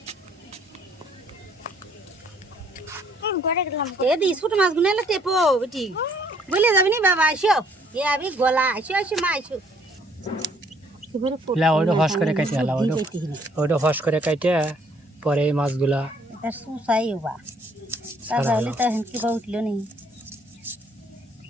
ছোট মাছ গুলো এলে টেপো বেটি বলে যাবি নি বাবা আইসো এ আমি গলা আইসো মা আইসো ওইটা ফস করে কাটে হলা, ওইটা ফস করে কাটে পরে এই মাছগুলা এটা সুসাই বা তাহলে তো হেন কি বা উঠলো নি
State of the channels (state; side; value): normal; both; correlation 0.63